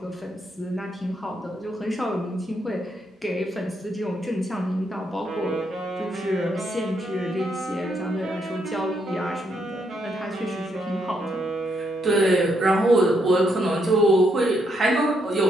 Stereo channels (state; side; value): normal; both; correlation 0.76